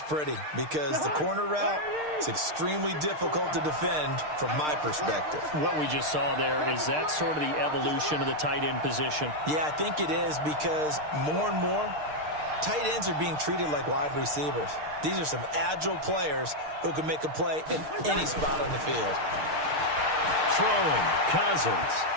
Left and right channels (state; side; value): late; left; 6.6 ms